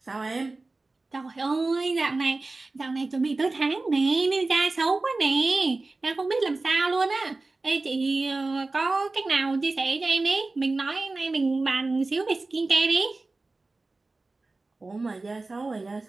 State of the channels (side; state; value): left; quieter; 3.4 dB